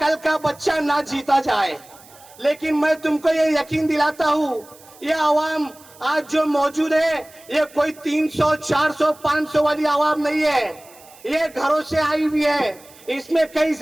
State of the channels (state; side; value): noise; right; hiss, 24 dB below the sound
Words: का बच्चा ना जीता जाए। लेकिन मैं तुमको ये यकीन दिलाता हूँ, ये आवाम आज जो मौजूद है, ये कोई 300, 400, 500 वाली आवाम नहीं है। ये घरों से आई हुई है। इसमें कई